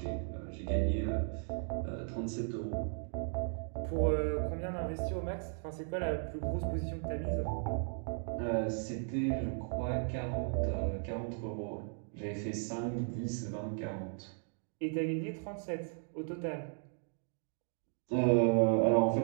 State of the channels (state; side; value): silent; left; 54 dB below the other